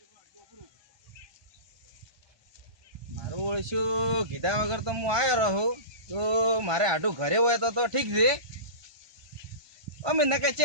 મારું ઓળશું કીધા વગર તો હું આવ્યો રહું તો મારે આટું ઘરે હોય તો ઠીક છે. અમે નકે ચે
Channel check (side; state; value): left; late; 1.2 ms